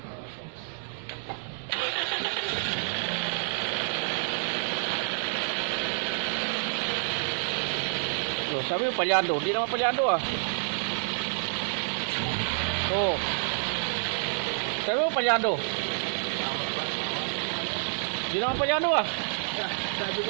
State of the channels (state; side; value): silent; left; 59 dB below the other